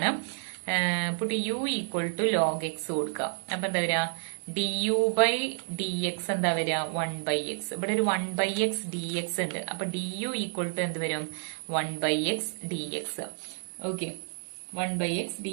Put u equal to log x കൊടുക്കാം. അപ്പൊ എന്താ വരിക, du by dx എന്താ വരിക 1 by x. ഇവിടെ ഒരു 1 by x dx ഉണ്ട്. അപ്പൊ du ഈക്വൽ ടു എന്ത് വരും 1 by x dx. Okay, 1 by x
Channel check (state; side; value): silent; left; 58 dB below the other